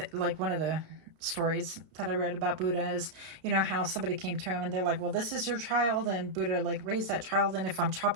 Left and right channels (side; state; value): left; late; 32 ms